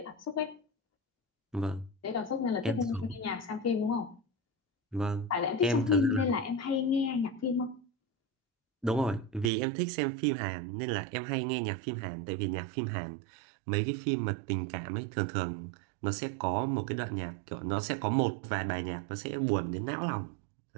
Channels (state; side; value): drops out; left; at 9.5 s